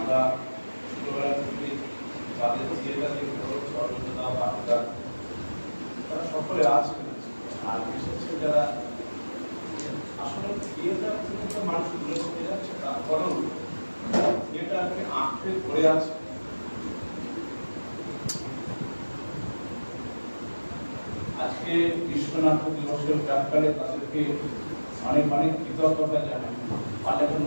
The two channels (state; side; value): inverted; both; correlation -1.00